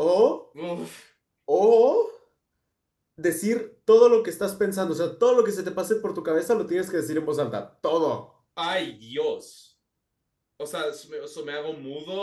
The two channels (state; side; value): identical; both; correlation 1.00